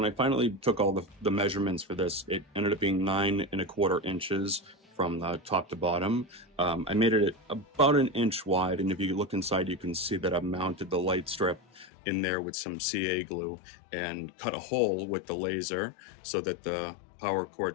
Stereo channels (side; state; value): right; drops out; at 11.9 s